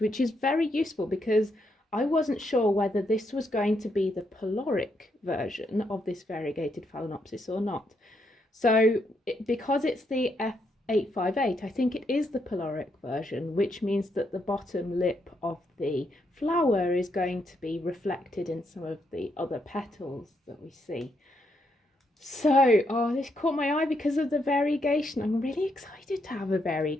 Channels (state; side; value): normal; both; correlation 0.78